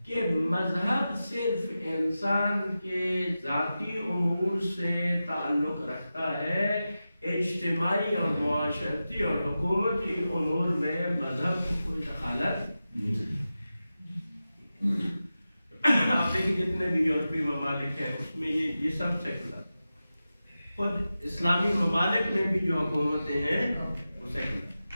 کہ مذہب صرف انسان کے ذاتی امور سے تعلق رکھتا ہے، اجتماعی اور معاشرتی اور حکومتی امور میں مذہب کو کوئی دخالت نہیں۔ آپ دیکھیں جتنے بھی یورپی ممالک ہیں اس میں یہ سب سیکولر، خود اسلامی ممالک میں بھی جو حکومتیں ہیں وہ سیکولر،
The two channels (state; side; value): inverted; both; correlation -0.93